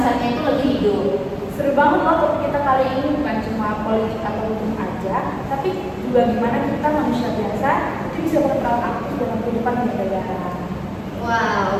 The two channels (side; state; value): both; identical; correlation 1.00